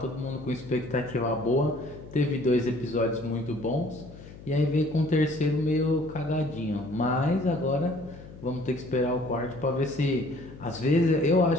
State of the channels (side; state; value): left; noise; hum, 17 dB below the sound